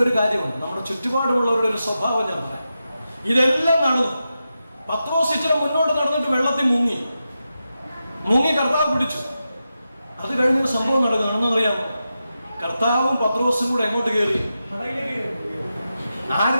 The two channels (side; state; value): both; inverted; correlation -0.90